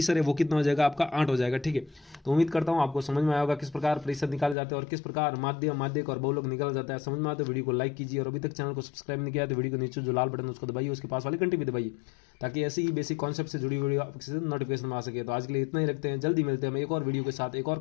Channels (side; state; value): right; drops out; at 4.5 s